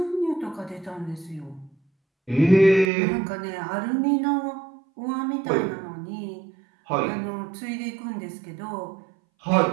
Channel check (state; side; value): drops out; left; at 2.9 s